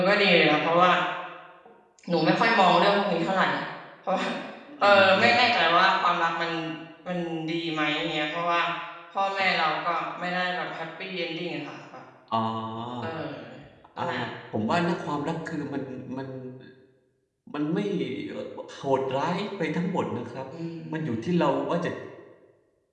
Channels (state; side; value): identical; both; correlation 1.00